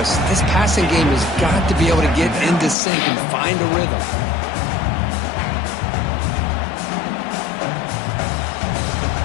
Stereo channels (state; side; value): drops out; right; at 2.8 s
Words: This passing game has got to be able to get into sync and find a rhythm.